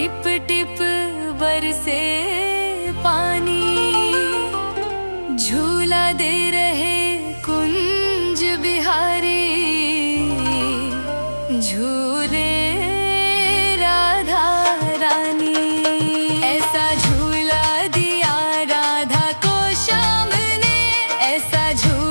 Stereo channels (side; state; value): both; inverted; correlation -1.00